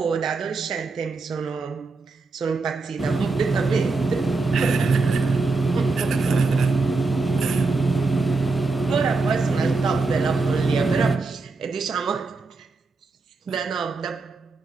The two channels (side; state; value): left; quieter; 3.9 dB